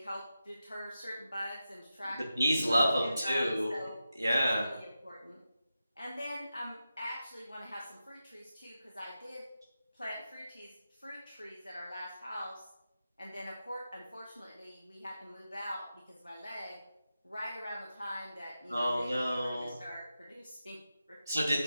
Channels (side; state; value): both; inverted; correlation -0.90